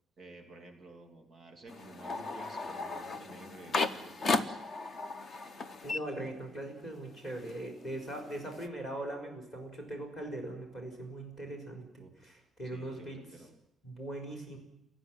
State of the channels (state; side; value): normal; both; correlation 0.72